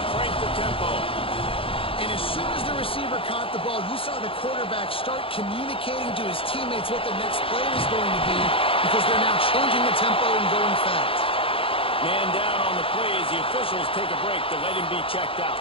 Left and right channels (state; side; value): late; right; 0.26 ms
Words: crank the tempo. And as soon as the receiver caught the ball, you saw the quarterback start communicating to his teammates what the next play was going to be, because they're now changing the tempo and going fast. Man down on the play as the officials take a break to let him be checked out.